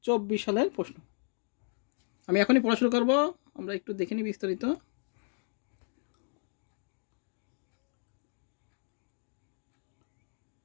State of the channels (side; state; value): right; silent; 55 dB below the other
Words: সালের প্রশ্ন। আমি এখনই পড়াশোনা করব, আমরা একটু দেখে নিই বিস্তারিত।